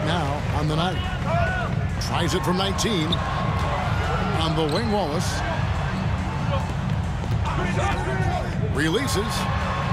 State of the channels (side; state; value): both; identical; correlation 1.00